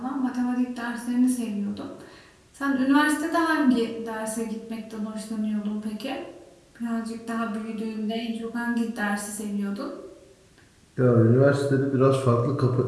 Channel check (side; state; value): both; identical; correlation 1.00